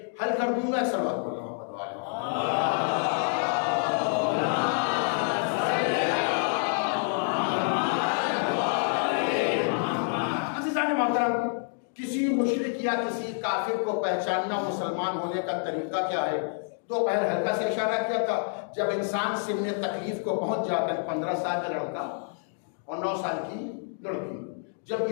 حل کر دوں گا. ایک سوال بول رہا ہوں کسی مشرک یا کسی کافر کو پہچاننا مسلمان ہونے کا طریقہ کیا ہے؟ تو پہلے ہلکا سے اشارہ کیا تھا, جب انسان سن تکلیف کو پہنچ جاتا ہے, 15 سال کا لڑکا اور 9 سال کی لڑکی, جب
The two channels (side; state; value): right; silent; 57 dB below the other